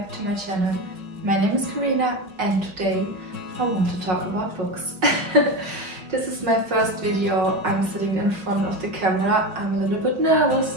to my channel. My name is Karina and today I want to talk about books. This is my first video. I'm sitting in front of the camera. I'm a little bit nervous,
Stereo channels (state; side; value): late; left; 5.3 ms